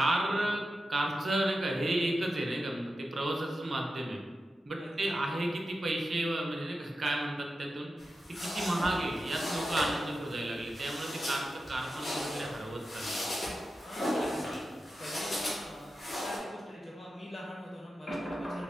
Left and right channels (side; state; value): both; normal; correlation 0.91